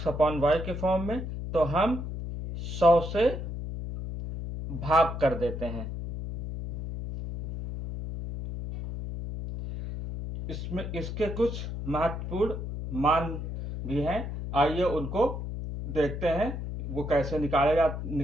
के फॉर्म में, तो हम 100 से भाग कर देते हैं। इसके कुछ महत्वपूर्ण मान भी हैं। आइए उनको देखते हैं, वो कैसे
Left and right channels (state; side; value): noise; left; hum, 6 dB below the sound